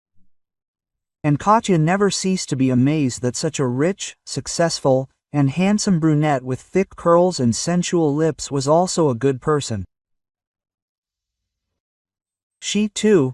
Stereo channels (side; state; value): both; identical; correlation 1.00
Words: And Katya never ceased to be amazed that such a rich, successful, and handsome brunette with thick curls and sensual lips was also a good person. She, too,